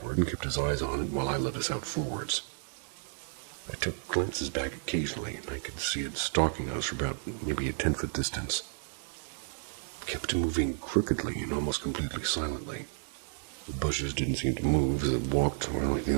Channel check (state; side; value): silent; left; digital silence